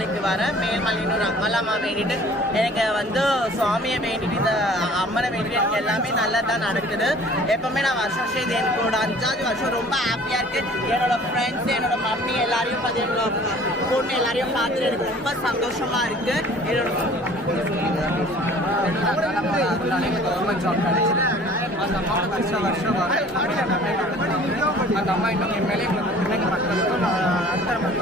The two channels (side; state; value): both; normal; correlation 0.50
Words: வரேன். மேல்மலையனூர் அம்மலாமா வேண்டிட்டு எனக்கு வந்து சுவாமியை வேண்டிட்டு இந்த அம்மனை வேண்டிட்டு எனக்கு எல்லாமே நல்லா தான் நடக்குது. எப்பவுமே நான் வருஷம் இது எனக்கு ஒரு 5வது வருஷம் ரொம்ப ஹாப்பியாக இருக்குது. என்னோட ஃப்ரெண்ட்ஸ், என்னோட மம்மி எல்லாரையும் பார்த்து, என்னோட பொண்ணு எல்லாரையும் பார்த்துட்டு எனக்கு ரொம்ப சந்தோஷமாக இருக்குது. என்னோட கவர்மெண்ட் ஜாப் கிடைச்சிது. அந்த அம்மாவை வருஷம் அந்த அம்மா இன்னும் என் மேலே பிள்ளைங்க மக்களுக்கும் அடுத்த